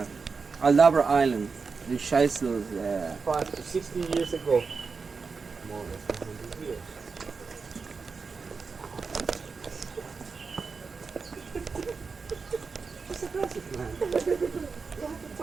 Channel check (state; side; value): quieter; left; 4.9 dB